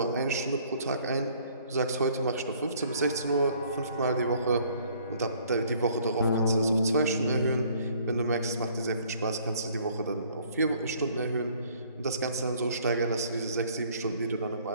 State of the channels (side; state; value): both; inverted; correlation -0.59